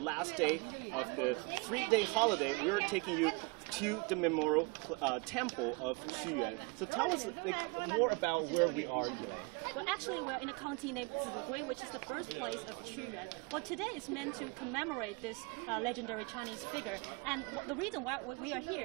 day of the 3-day holiday, we're taking you to the memorial temple of Qu Yuan. So tell us more about where we are, Yilei. Well, actually, we're in a county named Zi Gui, which is the birthplace of Qu Yuan. Well, today is meant to commemorate this legendary Chinese figure. And the reason why we are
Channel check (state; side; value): quieter; left; 28.8 dB